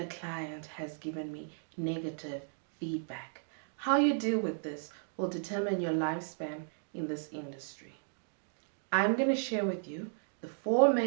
client has given me negative feedback. How you deal with this will determine your lifespan in this industry. I'm going to share with you the 4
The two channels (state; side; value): silent; left; digital silence